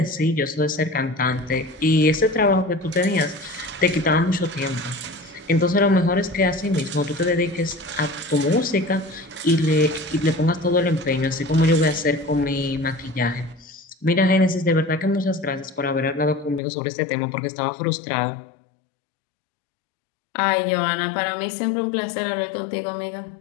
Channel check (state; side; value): drops out; right; at 16.6 s